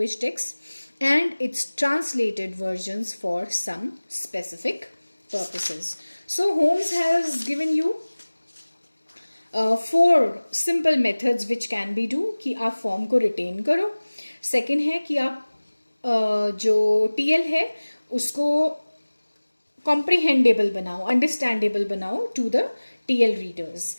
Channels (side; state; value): both; inverted; correlation -1.00